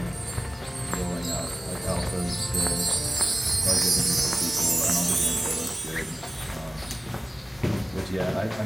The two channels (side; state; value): both; normal; correlation 0.97